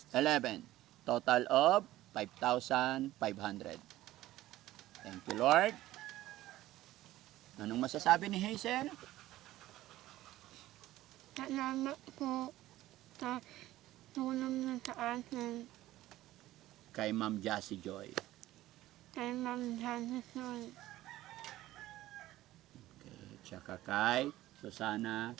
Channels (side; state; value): left; quieter; 15.6 dB